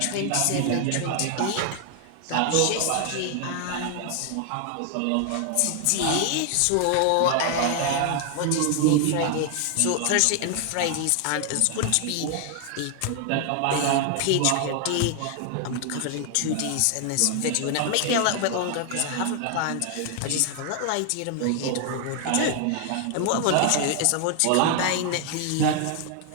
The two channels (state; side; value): different; both; correlation 0.00